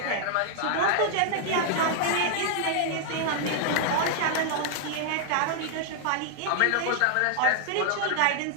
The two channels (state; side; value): different; both; correlation -0.01